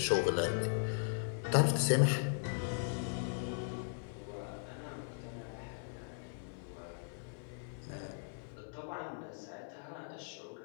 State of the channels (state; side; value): silent; right; 52 dB below the other